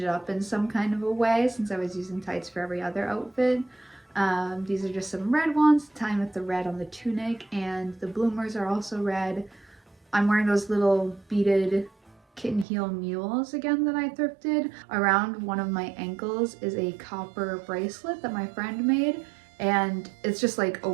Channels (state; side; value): drops out; left; at 12.7 s